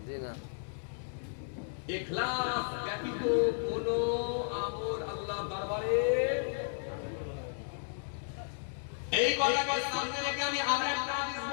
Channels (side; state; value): right; silent; digital silence